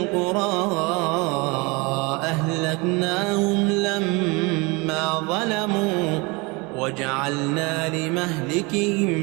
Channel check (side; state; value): left; quieter; 27.0 dB